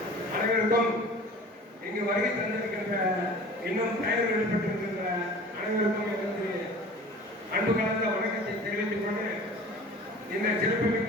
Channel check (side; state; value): both; normal; correlation 0.42